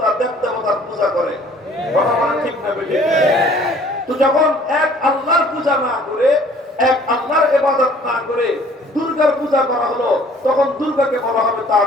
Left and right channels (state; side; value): normal; both; correlation 0.55